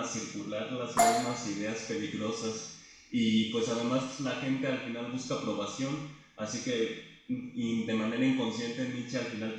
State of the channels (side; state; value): both; identical; correlation 1.00